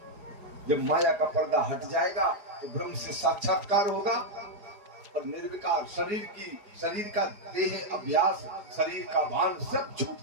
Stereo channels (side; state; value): left; late; 4.8 ms